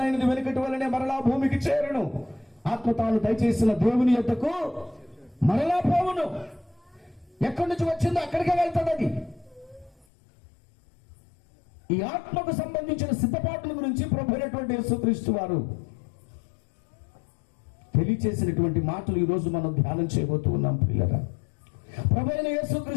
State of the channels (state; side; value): drops out; right; at 10.1 s